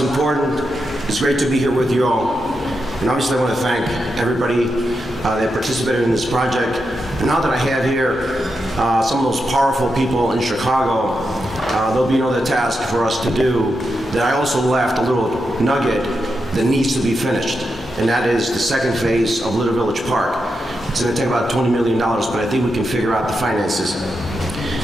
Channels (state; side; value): normal; both; correlation 0.86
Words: It's great to be here with you all. And obviously I want to thank everybody that participated in this project. And now that I have here some of those powerful people in Chicago, there'll be another task for us to do that I also left a little nugget that needs to be finished. And that is the second phase of Little Village Park. It's going to take about $20 million, but I think we can figure out the finances.